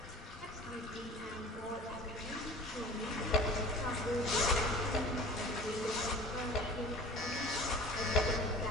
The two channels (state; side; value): normal; both; correlation 0.41